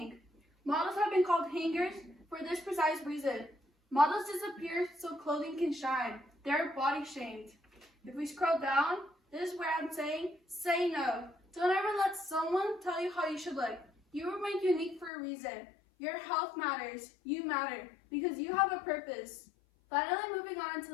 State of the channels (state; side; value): drops out; right; at 15.1 s